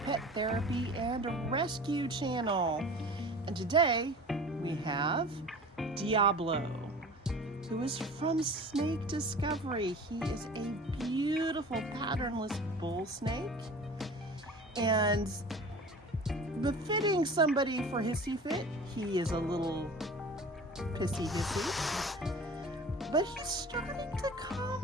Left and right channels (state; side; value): normal; both; correlation 0.40